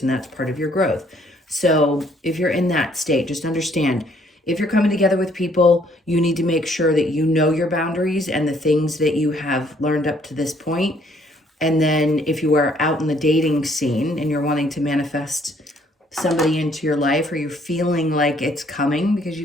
and that's part of your growth. So if you're in that state, just understand, if you're coming together with people, you need to make sure that you know your boundaries and the things that you have learned up to this point. And then if you are out in the dating scene and you're wanting to manifest somebody into your life, or you're feeling like it's coming, because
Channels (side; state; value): both; normal; correlation 0.64